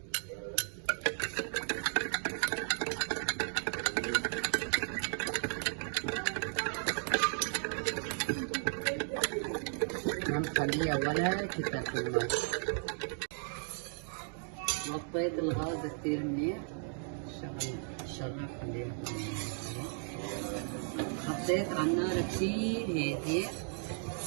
ما مخليها ولا كتل في المي. وطيت الغاز كتير منيح، الشغل خليها. حطيت على النار كتير هادي.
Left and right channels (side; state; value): left; silent; 54 dB below the other